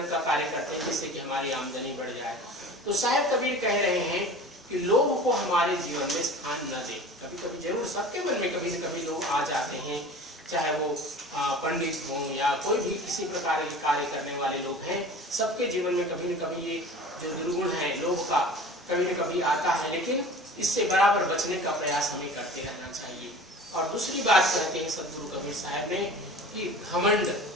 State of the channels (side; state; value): both; normal; correlation 0.40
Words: का कार्य करते हैं, जिससे कि हमारी आमदनी बढ़ जाए। तो साहिब कबीर कह रहे हैं कि लोग को हमारे जीवन में स्थान न दे। कभी कभी जरूर सबके मन में कभी न कभी लोग आ जाते हैं, चाहे वो पंडित हों या कोई भी किसी प्रकार के कार्य करने वाले लोग हैं, सबके जीवन में कभी न कभी ये जो दुर्गुण है लोग का कभी न कभी आता है, लेकिन इससे बराबर बचने का प्रयास हमें करते रहना चाहिए। और दूसरी बात कहते हैं सदगुरु कबीर साहब ने कि घमंड,